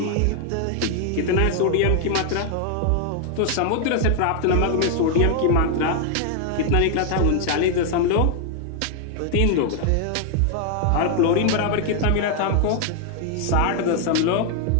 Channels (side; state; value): both; different; correlation 0.00